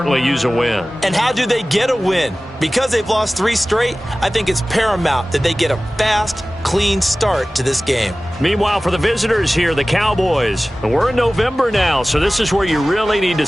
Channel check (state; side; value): normal; both; correlation 0.97